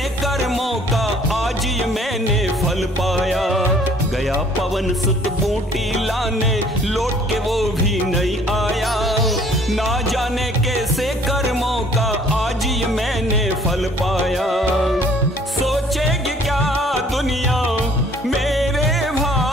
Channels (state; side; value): normal; both; correlation 0.57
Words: कर्मों का आज ये मैंने फल पाया। गया पवन सुत बूटी लाने, लौट के वो भी नहीं आया। ना जाने कैसे कर्मों का आज ये मैंने फल पाया। सोचेगी क्या दुनिया मेरे